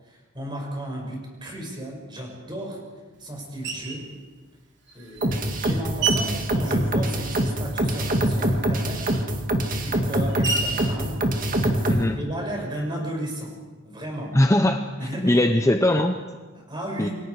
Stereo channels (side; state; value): both; normal; correlation 0.69